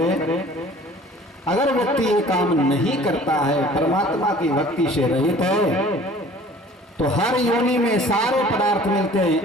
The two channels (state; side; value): normal; both; correlation 0.49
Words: अगर व्यक्ति ये काम नहीं करता है, परमात्मा की भक्ति से रहित है, तो हर योनि में सारे पदार्थ मिलते